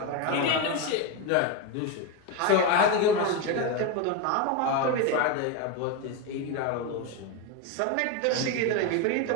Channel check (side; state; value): both; different; correlation 0.03